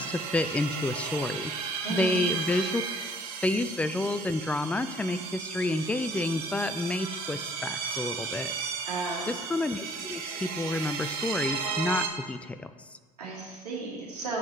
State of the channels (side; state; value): both; normal; correlation 0.60